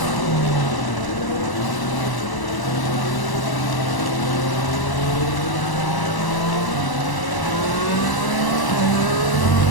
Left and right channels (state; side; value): late; right; 1.0 ms